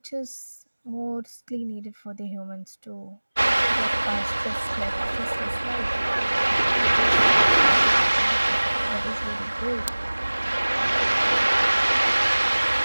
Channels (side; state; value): both; inverted; correlation -1.00